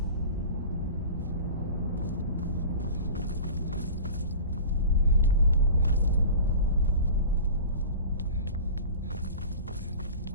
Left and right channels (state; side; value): inverted; both; correlation -0.36